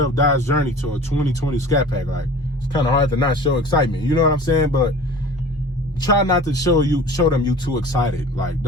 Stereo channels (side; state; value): both; normal; correlation 0.41